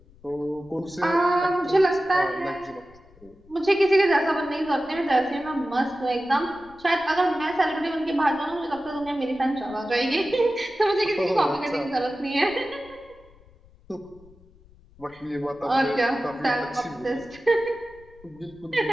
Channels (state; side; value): noise; left; rumble, 26 dB below the sound